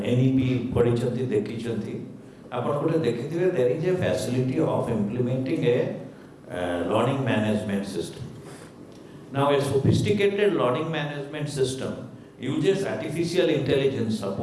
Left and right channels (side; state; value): both; identical; correlation 1.00